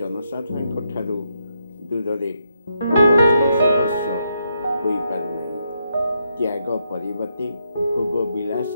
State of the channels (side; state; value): both; inverted; correlation -0.80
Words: ठारू दूर त्याग परिवर्ते भोग विलास